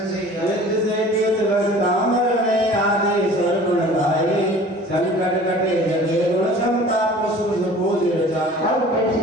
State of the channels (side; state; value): both; normal; correlation 0.45